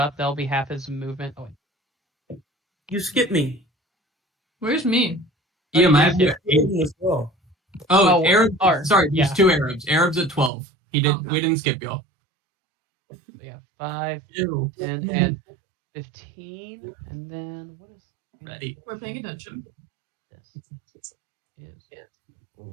That'll be half his movement. Oh, wait. You skipped me. Where's me? Ian, I have yeah. you. As well. Oh, Oh, Arab. or- Sorry, yeah. there's 2 Arabs. Arab's at 12. He didn't. Okay. We didn't skip y'all. Yeah, 5, Ew. 10, and 15, and then what is Ready. We're paying attention. this? Is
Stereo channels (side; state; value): left; drops out; at 10.5 s